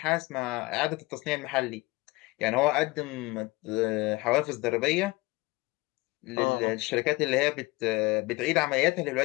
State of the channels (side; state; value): right; quieter; 22.5 dB